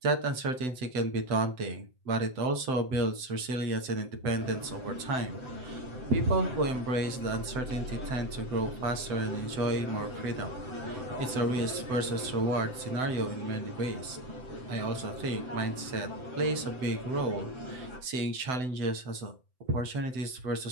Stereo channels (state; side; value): late; left; 7.8 ms